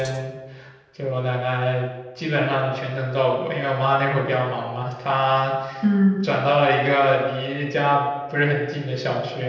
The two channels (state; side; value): identical; both; correlation 1.00